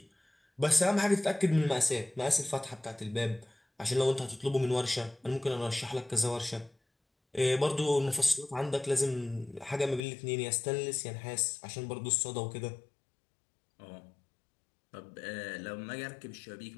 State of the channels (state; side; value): drops out; right; at 10.1 s